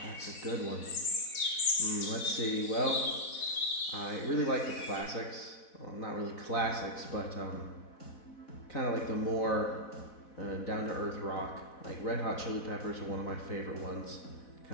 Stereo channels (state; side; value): late; right; 4.1 ms